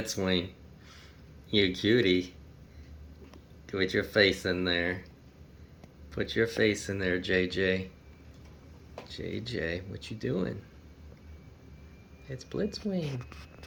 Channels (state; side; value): identical; both; correlation 1.00